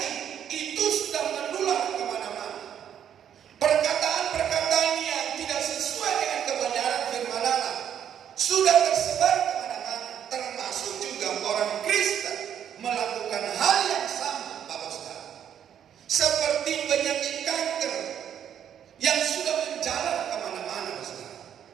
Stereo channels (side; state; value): left; quieter; 9.3 dB